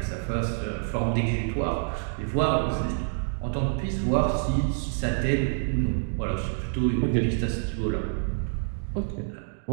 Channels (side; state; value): left; silent; 60 dB below the other